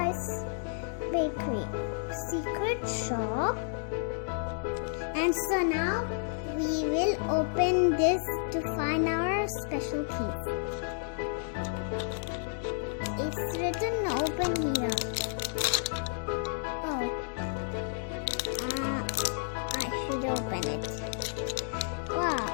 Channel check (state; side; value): silent; right; digital silence